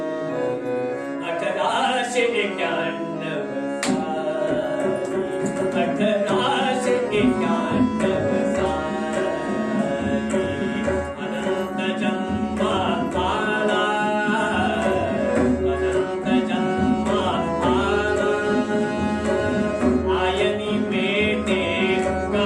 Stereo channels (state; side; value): identical; both; correlation 1.00